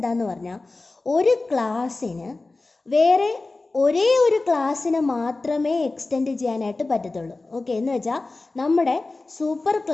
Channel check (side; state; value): right; quieter; 3.3 dB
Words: പറഞ്ഞാൽ ഒരു ക്ലാസ്സിന് വേറെ ഒരേ ഒരു ക്ലാസ്സിനെ മാത്രമേ എക്സ്റ്റെൻഡ് ചെയ്യാനായിട്ട് പറ്റത്തുള്ളൂ. ഓക്കെ, എന്ന് വെച്ചാൽ നമ്മുടെ സൂപ്പർ